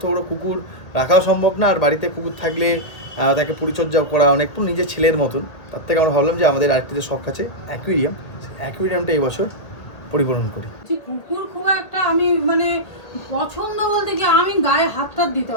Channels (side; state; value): right; late; 1.6 ms